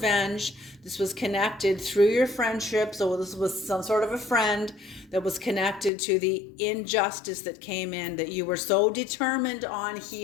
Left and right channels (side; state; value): right; drops out; at 5.9 s